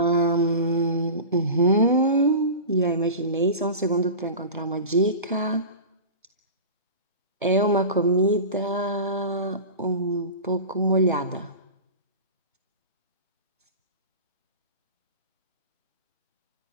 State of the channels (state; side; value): inverted; both; correlation -0.32